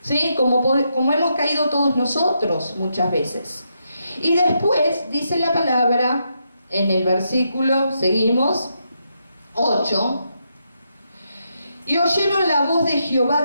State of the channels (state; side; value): inverted; both; correlation -0.81